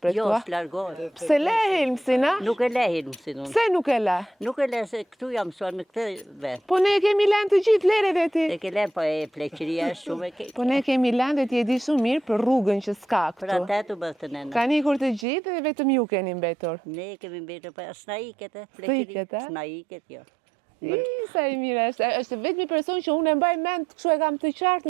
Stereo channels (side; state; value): left; drops out; at 15.2 s